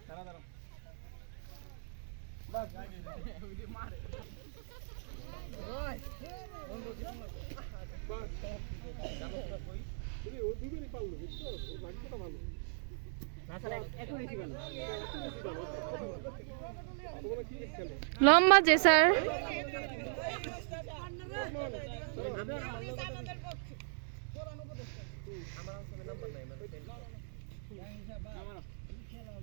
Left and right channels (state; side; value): silent; left; digital silence